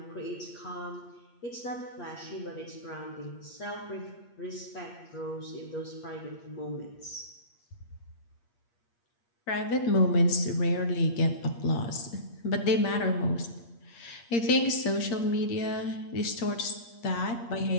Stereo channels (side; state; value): right; late; 8.5 ms